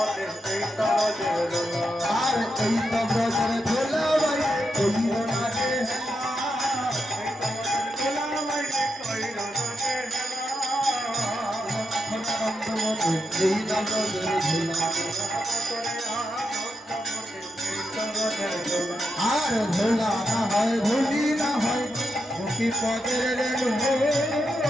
আর এই তো ব্রজের ধুলা ভাই কইরো না রে আনন্দময়ী এই আনন্দের ধুলা, আর ধুলা না হয় ধুলি না হয় মুখি পদের রেণু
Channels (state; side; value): normal; both; correlation 0.85